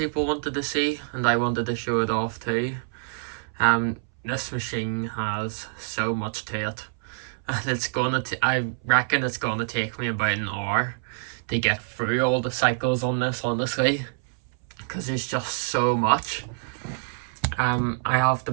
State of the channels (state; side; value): silent; left; 61 dB below the other